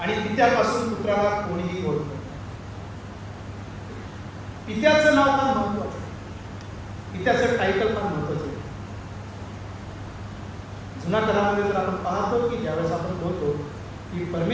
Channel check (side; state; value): both; identical; correlation 1.00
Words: पित्यापासून पुत्राला कोणीही ओळखत. पित्याचं नाव फार महत्वाचं आहे. पित्याचं टायटल फार महत्वाचं आहे. जुन्या करारामध्ये जर आपण पाहतो की ज्यावेळेस आपण बोलतो की